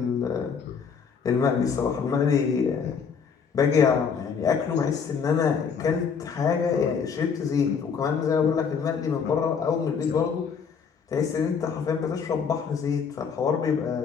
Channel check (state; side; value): quieter; right; 6.3 dB